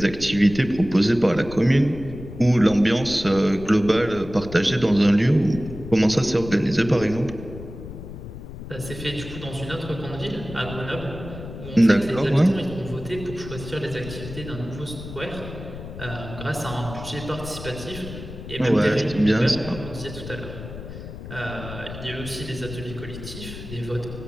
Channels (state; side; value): noise; left; rumble, 11 dB below the sound